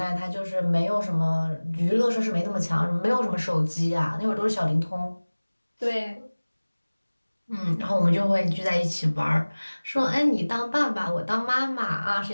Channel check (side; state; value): both; inverted; correlation -1.00